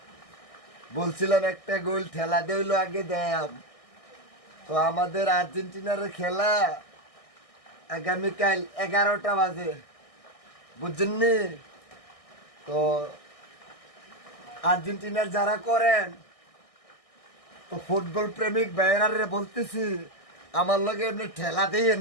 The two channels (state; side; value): late; right; 1.6 ms